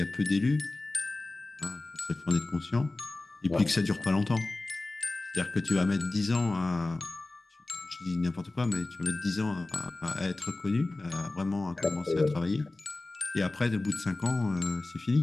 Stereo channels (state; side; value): quieter; right; 3.0 dB